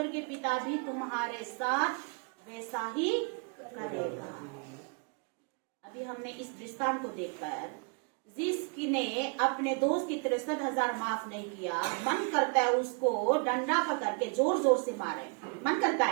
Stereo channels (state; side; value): quieter; left; 35.8 dB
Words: पिता भी तुम्हारे साथ वैसा ही करेगा। अभी हमने इस दृष्टांत को देखकर, जिसने अपने दोस्त की 63,000 माफ नहीं किया, मन करता है उसको डंडा पकड़ के जोर जोर से मारे, मन करता